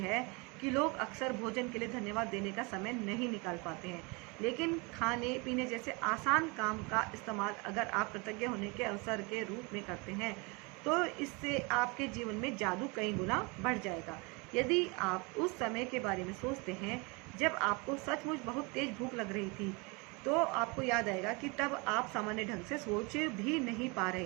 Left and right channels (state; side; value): quieter; left; 28.8 dB